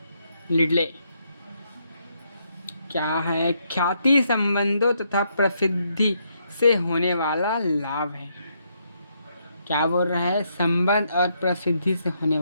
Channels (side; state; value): both; inverted; correlation -0.76